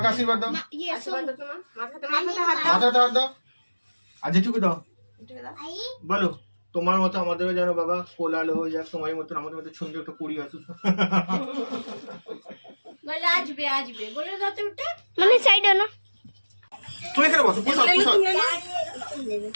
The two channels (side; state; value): both; inverted; correlation -1.00